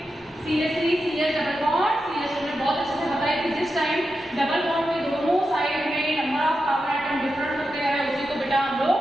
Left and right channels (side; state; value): both; normal; correlation 0.89